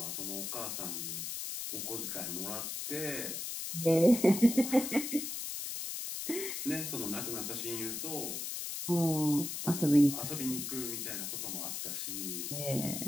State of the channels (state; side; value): noise; left; hiss, 4 dB below the sound